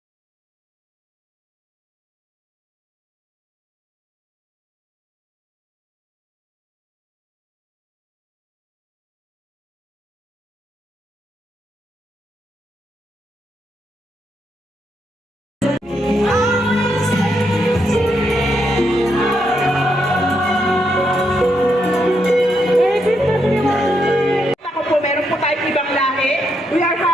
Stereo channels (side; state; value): both; normal; correlation 0.79